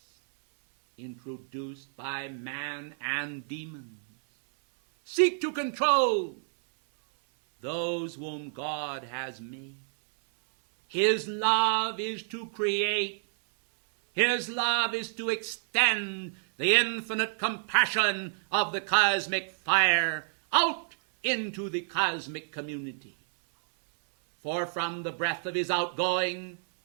introduced by man and demon, seek to control those whom God has made. His love is to create. His love is to extend the infinite compassion of the cosmic fire out into the cosmic community. For from the breath of his outgoing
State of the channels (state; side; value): silent; left; 58 dB below the other